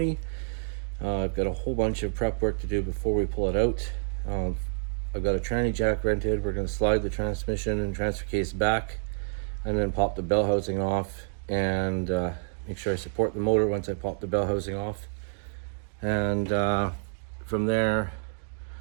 I've got a whole bunch of prep work to do before we pull it out. I've got a tranny jack rented. We're going to slide the transmission and transfer case back and then pop the bell housing off and make sure I support the motor once I pop the bell housing off. And from there,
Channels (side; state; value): left; silent; digital silence